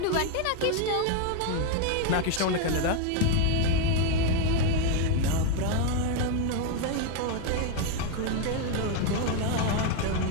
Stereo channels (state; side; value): different; both; correlation 0.01